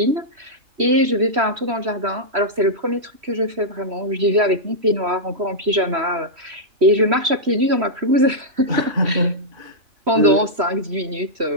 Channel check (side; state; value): left; late; 3.1 ms